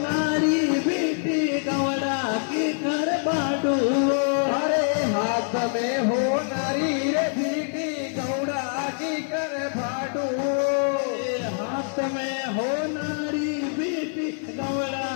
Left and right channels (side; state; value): right; silent; 60 dB below the other